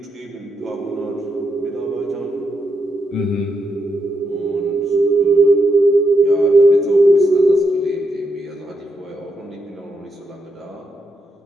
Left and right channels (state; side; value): normal; both; correlation 0.82